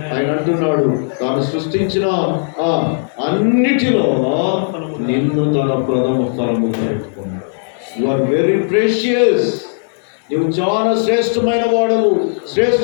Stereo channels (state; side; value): silent; right; digital silence